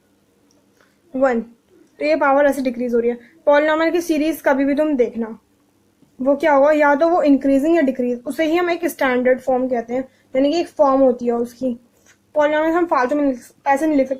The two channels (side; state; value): both; identical; correlation 1.00